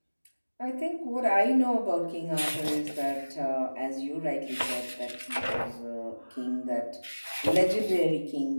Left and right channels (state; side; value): inverted; both; correlation -1.00